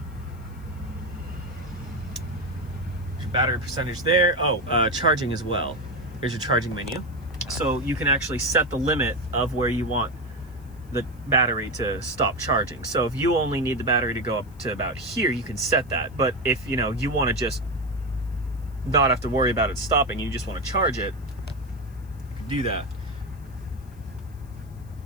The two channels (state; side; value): noise; left; hiss, 29 dB below the sound